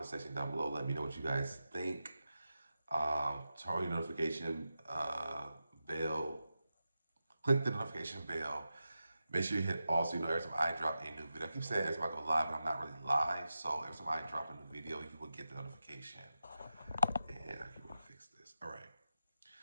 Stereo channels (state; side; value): inverted; both; correlation -0.91